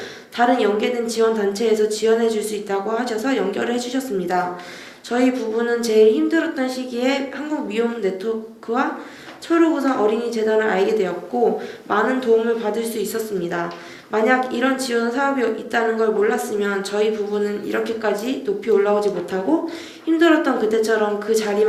다른 연계된 지원단체에서 지원해 줄 수 있다고 하셔서 연결을 해주셨습니다. 저희 부부는 제일 힘들었던 시기에 한국미혼네트워크와 초록우산 어린이재단을 알게 되었고 많은 도움을 받을 수 있었습니다. 만약 이런 지원 사업이 있다는 걸 몰랐으면 저희 부부는 이렇게까지 높이 올라오지 못하고 힘들었던 그때처럼 그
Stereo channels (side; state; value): both; identical; correlation 1.00